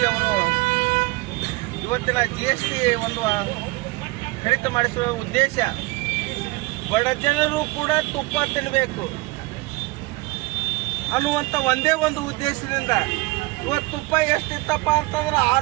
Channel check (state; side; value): quieter; left; 22.6 dB